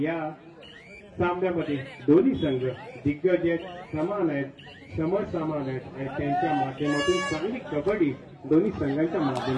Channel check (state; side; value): identical; both; correlation 1.00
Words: या सामन्यामध्ये दोन्ही संघ दिग्गज आहेत, समान आहेत, समसमान आहेत आणि त्यांच्या माध्यमातून चांगली कबड्डी दोन्ही संघांच्या